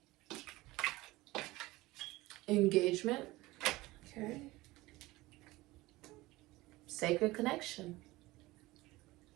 Engagement. Okay. Sacred connection.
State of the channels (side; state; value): left; quieter; 19.7 dB